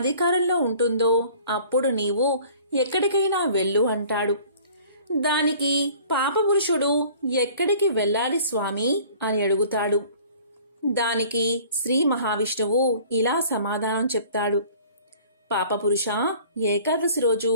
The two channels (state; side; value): inverted; both; correlation -0.50